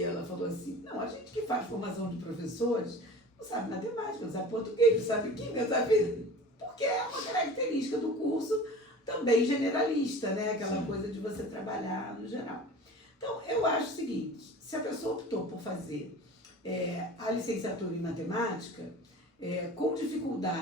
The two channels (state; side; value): normal; both; correlation 0.39